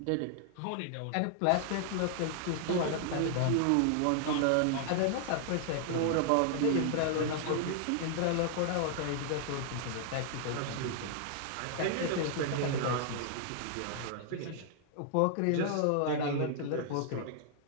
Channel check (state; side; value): different; both; correlation 0.00